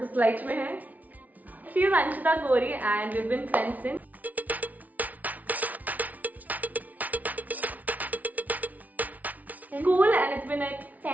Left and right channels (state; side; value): late; left; 0.074 ms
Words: स्लाइड में है। She is Anshita Gauri and we have been friends since school and it's been like